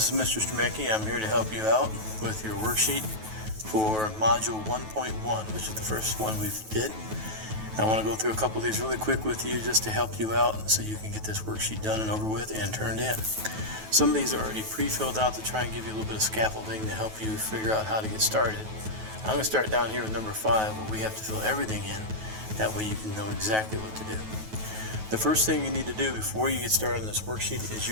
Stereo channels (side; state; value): left; late; 9.3 ms